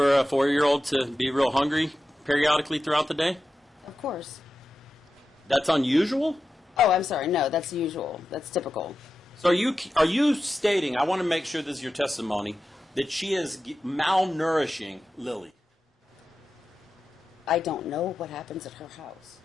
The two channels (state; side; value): normal; both; correlation 0.91